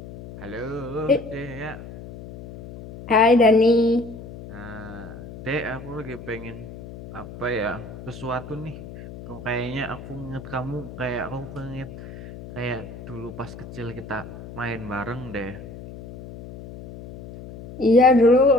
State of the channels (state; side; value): noise; left; hum, 14 dB below the sound